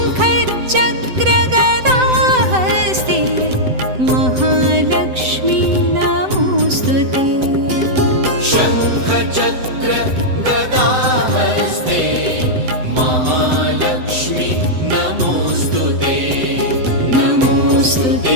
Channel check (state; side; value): late; left; 7.9 ms